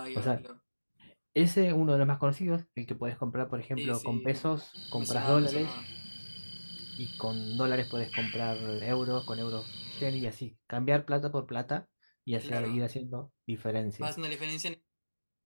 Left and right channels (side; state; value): both; inverted; correlation -1.00